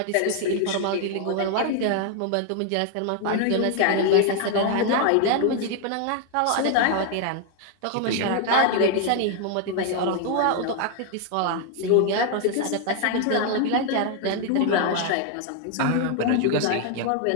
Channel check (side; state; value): both; different; correlation 0.00